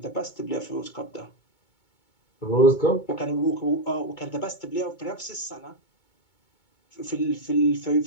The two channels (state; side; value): late; right; 2.2 ms